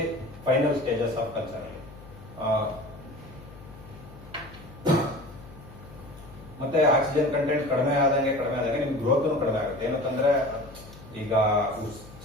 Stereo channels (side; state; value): left; noise; hum, 18 dB below the sound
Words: final stages of culture ಅಲ್ಲಿ. ಮತ್ತೆ ಆಕ್ಸಿಜನ್ ಕಂಟೆಂಟ್ ಕಡಿಮೆ ಆದಂಗೆ ನಿಮ್ಗೆ ಗ್ರೋತ್ ಕಡಿಮೆ ಆಗುತ್ತೆ. ಏನಂತಂದ್ರೆ ಈಗ